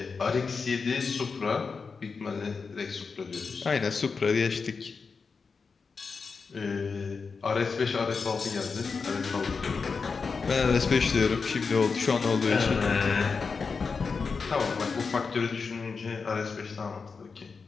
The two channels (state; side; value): quieter; right; 5.0 dB